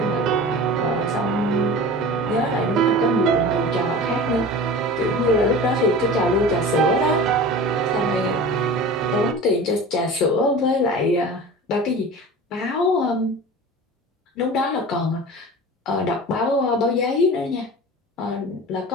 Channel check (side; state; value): both; normal; correlation 0.35